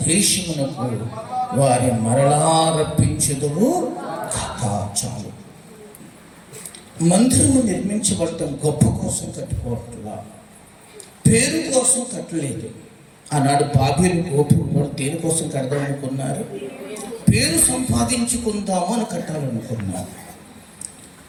దేశమునకు వారి మరలా రప్పించుదువు కథ. చాలు. మందిరము నిర్మించబడటం గొప్ప కోసం కట్టుకోవట్లా, పేరు కోసం కట్టలేదు. ఆనాడు బాబేలు గోపురం కూడా దేనికోసం కడదాం అనుకున్నారు? పేరు సంపాదించుకుందాము అని కట్టాలనుకున్నారు.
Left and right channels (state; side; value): identical; both; correlation 1.00